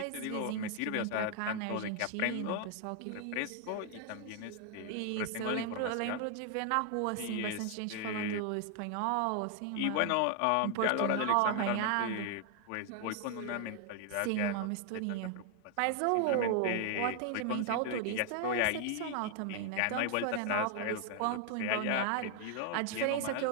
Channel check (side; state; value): both; different; correlation 0.00